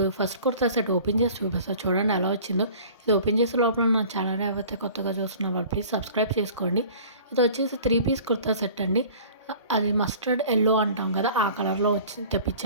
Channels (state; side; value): inverted; both; correlation -0.45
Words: ఫస్ట్ కుర్తా సెట్ ఓపెన్ చేసి చూపిస్తాను, చూడండి ఎలా వచ్చిందో. ఇది ఓపెన్ చేసే లోపల నా ఛానల్ ఎవరైతే కొత్తగా చూస్తున్న వాళ్ళు ప్లీజ్ సబ్స్క్రైబ్ చేసుకోండి. ఇది వచ్చేసి 3 పీస్ కుర్తా సెట్ అండి. అది మస్టర్డ్ ఎల్లో అంటాం కదా, ఆ కలర్లో వచ్చి